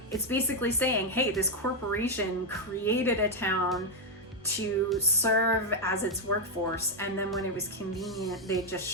It's basically saying, hey, this corporation created a town to serve as its workforce, and then when it was convenient, they just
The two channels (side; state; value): both; normal; correlation 0.02